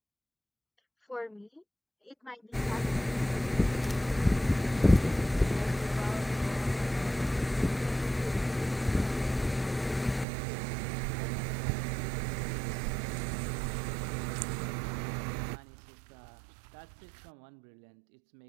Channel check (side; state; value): left; drops out; at 10.2 s